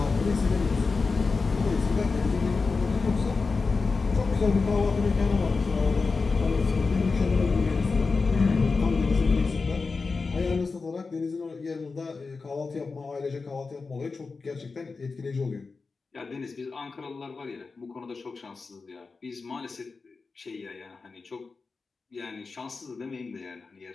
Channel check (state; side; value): quieter; right; 4.3 dB